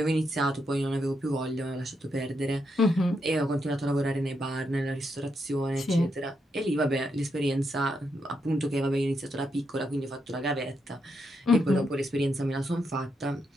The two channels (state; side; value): normal; both; correlation 0.81